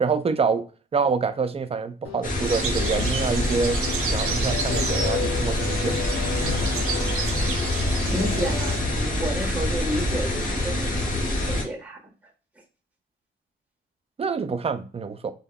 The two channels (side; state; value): both; normal; correlation 0.55